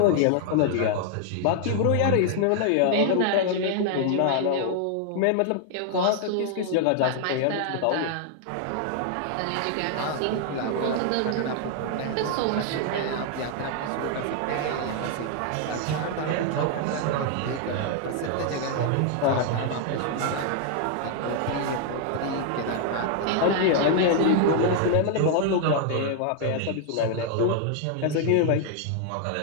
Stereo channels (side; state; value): both; different; correlation 0.00